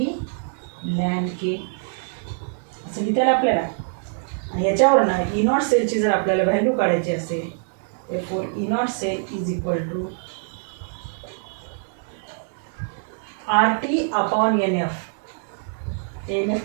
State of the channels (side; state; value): left; silent; 63 dB below the other